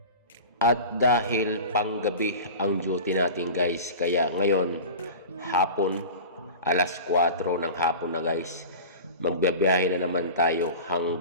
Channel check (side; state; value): both; inverted; correlation -0.34